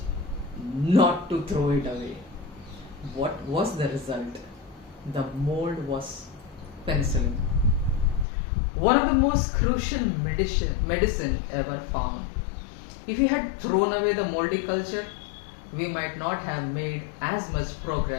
not to throw it away. What was the result? The mold was penicillin, one of the most crucial medicine ever found. If we had thrown away the moldy culture, we might not have made as much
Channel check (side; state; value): right; drops out; at 8.2 s